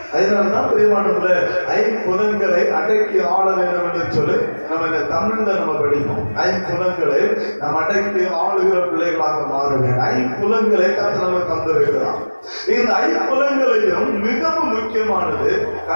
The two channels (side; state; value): both; inverted; correlation -1.00